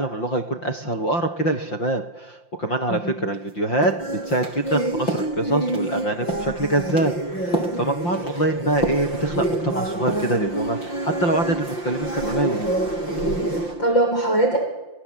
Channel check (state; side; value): late; right; 5.8 ms